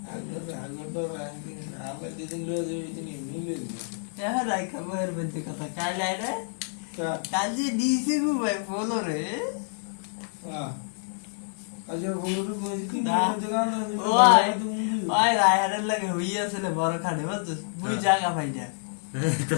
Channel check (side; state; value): right; silent; digital silence